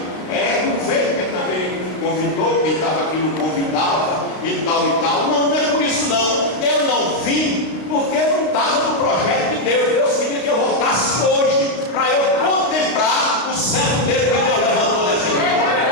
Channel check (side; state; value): right; late; 32 ms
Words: não veio porque também me convidou, quem estava aqui não convidava e tal e tal. Não é por isso não. Eu não vim porque não estava no projeto de Deus. Deus queria que eu voltasse hoje para eu contemplar o servo dele que Deus levantou dessa igreja.